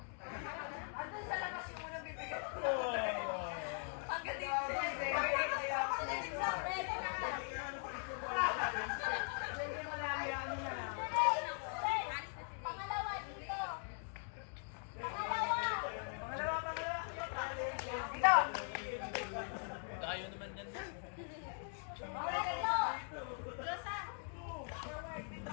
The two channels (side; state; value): right; silent; 50 dB below the other